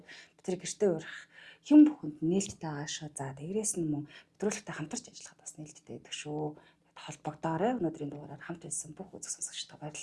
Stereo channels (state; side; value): identical; both; correlation 1.00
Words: бид тэрийг гэртээ урах юм бүхэнд нээлттэй байгаа шүү. За тэгрээс нь мөн нэвтрүүлэгтэй хамтарч ажиллахад бас нээлттэй байдаг шүү. Холбогдоорой. Өнөөдрийн дугаараар хамт байсан бүх үзэг сонсогчдод